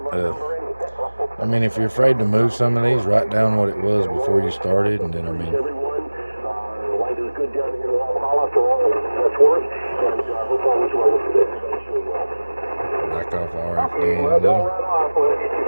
I mean, if you're afraid to move some of these, write down what it was before you started, and then, I mean, Life is good down here in Walhalla, so that's worth. And I hope all is well with everybody's doing well. back off the RF gain a little.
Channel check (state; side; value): inverted; both; correlation -1.00